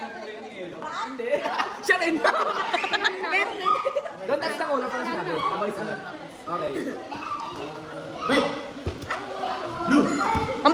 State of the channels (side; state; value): both; identical; correlation 1.00